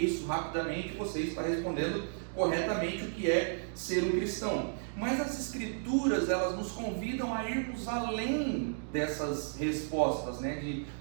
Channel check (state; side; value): silent; left; digital silence